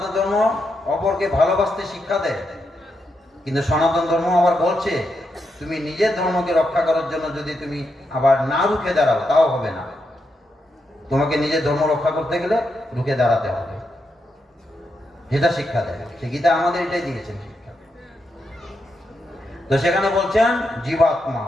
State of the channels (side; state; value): both; normal; correlation 0.83